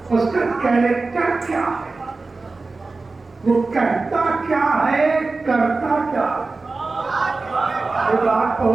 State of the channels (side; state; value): left; quieter; 3.7 dB